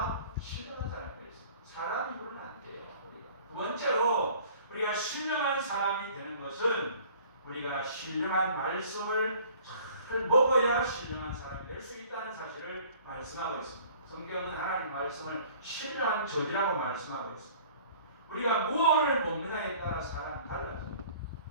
신령한 사람이 될 수 있습니다. 사람 입으로는 안 돼요. 두 번째로 우리가 신령한 사람이 되는 것은 우리가 신령한 말씀을 잘 먹어야 신령한 사람이 될 수 있다는 사실을 말씀하고 있습니다. 성경은 하나님 말씀을 신령한 저지라고 말씀하고 있습니다. 우리가 무엇을 먹느냐에 따라 사람이 달라집니다.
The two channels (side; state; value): both; inverted; correlation -0.51